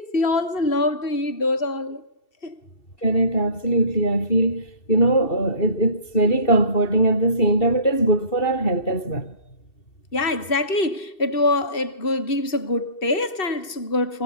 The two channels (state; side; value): late; right; 2.7 ms